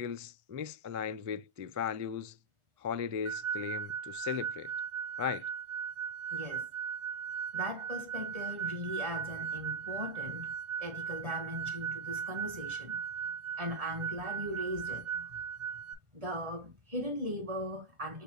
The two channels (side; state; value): left; late; 1.4 ms